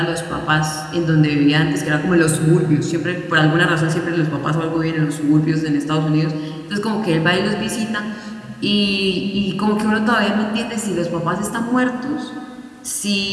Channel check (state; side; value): identical; both; correlation 1.00